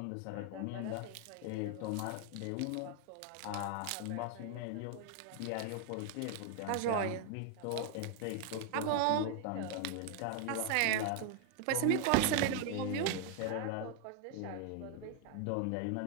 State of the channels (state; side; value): different; both; correlation 0.00